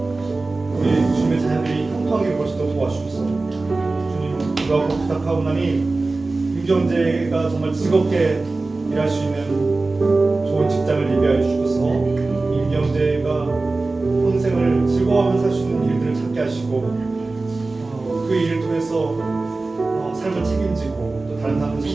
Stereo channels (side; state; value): left; quieter; 3.4 dB